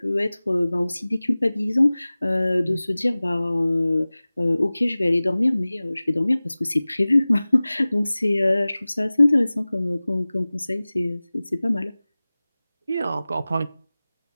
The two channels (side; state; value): both; inverted; correlation -0.98